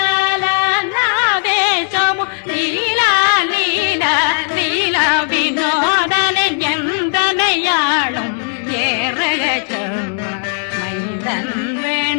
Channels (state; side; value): silent; right; 66 dB below the other